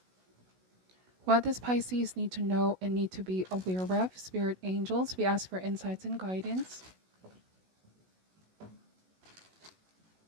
What does Pisces need to know and need to be aware of? Spirit angels, we ask for insights and guidance.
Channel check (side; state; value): left; late; 16 ms